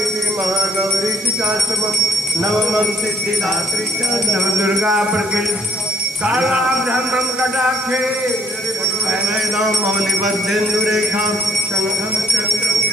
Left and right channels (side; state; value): right; noise; hiss, 13 dB below the sound